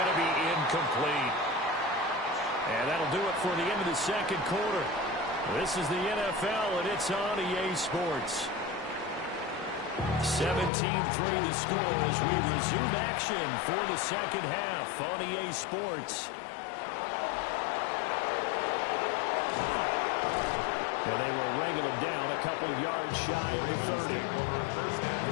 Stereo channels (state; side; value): drops out; right; at 10.7 s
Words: to be incomplete. And that'll do it for the end of the second quarter. This is the NFL, and it's on EA Sports. 17-3 the score as we resume action for the second half on EA Sports. And they will wrangle him down a couple yards shy of the 30.